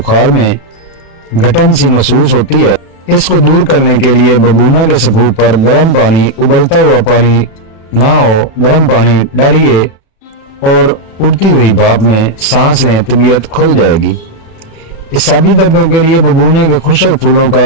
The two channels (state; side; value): late; right; 36 ms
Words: में घटन सी महसूस होती है। इसको दूर करने के लिए बबूना के सफूफ पर गर्म पानी, उबलता हुआ पानी ना हो, गर्म पानी डालिए और उड़ती हुई भाप में सांस लें, तबीयत खुल जाएगी। इसाबी दर्दों के लिए बबूने के खुशक फूलों